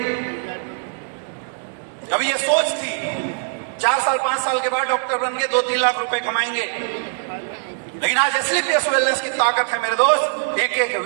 कभी ये सोच थी 4 साल 5 साल के बाद डॉक्टर बन के 2-3 लाख रुपए कमाएंगे। लेकिन आज एसलीपीएस वेलनेस की ताकत है मेरे दोस्त, एक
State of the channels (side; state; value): left; silent; digital silence